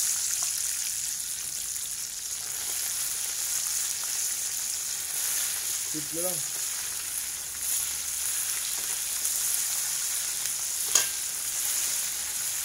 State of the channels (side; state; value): both; identical; correlation 1.00